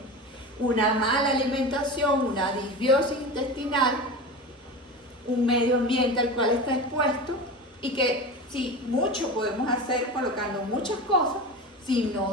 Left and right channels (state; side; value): normal; both; correlation 0.28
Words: Una mala alimentación, una disbiosis intestinal, un medio ambiente al cual está expuesto y que sí, mucho podemos hacer colocando muchas cosas si